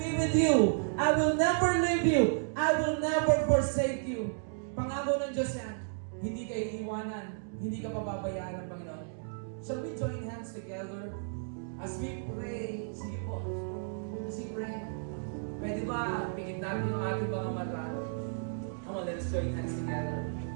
with you. I will never leave you. I will never forsake you. Pangako ng Diyos yan. Hindi ka iiwanan. Hindi ka pababayaan ng Panginoon. Shall we join hands together as we pray? Sige po. As we pray. Pwede ba, pikit natin yung ating mga mata. Come on, let's join hands together.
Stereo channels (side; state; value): left; silent; digital silence